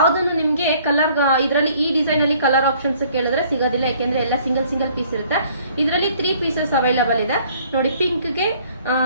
ನಿಮಗೆ ಕಲರ್ ಇದರಲ್ಲಿ ಈ ಡಿಸೈನ್ ಅಲ್ಲಿ ಕಲರ್ ಆಪ್ಷನ್ಸ್ ಕೇಳಿದ್ರೆ ಸಿಗೋದಿಲ್ಲ, ಯಾಕೆಂದ್ರೆ ಎಲ್ಲ ಸಿಂಗಲ್ ಪೀಸ್ ಇರುತ್ತೆ. ಇದರಲ್ಲಿ 3 ಪೀಸಸ್ ಅವೈಲಬಲ್ ಇದೆ ನೋಡಿ. ಪಿಂಕ್ ಗೆ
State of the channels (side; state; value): both; inverted; correlation -0.58